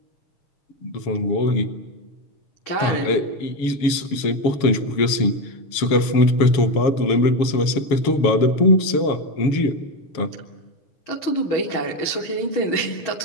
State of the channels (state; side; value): late; right; 7.2 ms